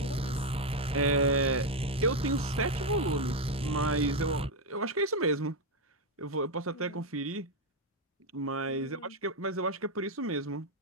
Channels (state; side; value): normal; both; correlation 0.05